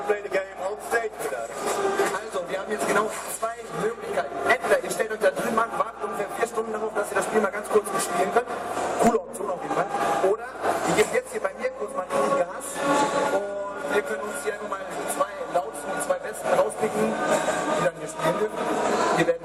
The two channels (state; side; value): noise; left; hum, 30 dB below the sound